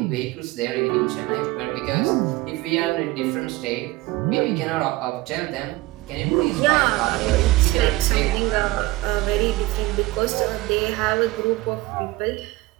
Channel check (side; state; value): left; quieter; 19.6 dB